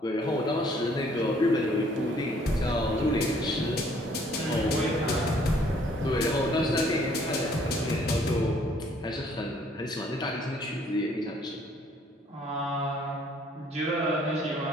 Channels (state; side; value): normal; both; correlation 0.62